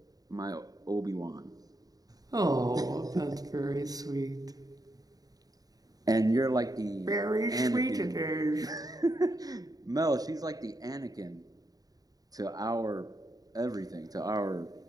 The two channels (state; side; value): late; left; 0.18 ms